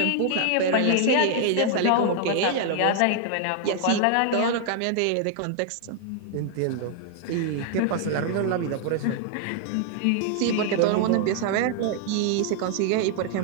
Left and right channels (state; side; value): different; both; correlation 0.00